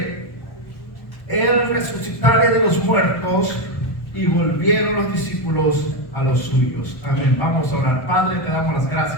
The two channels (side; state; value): right; late; 1.2 ms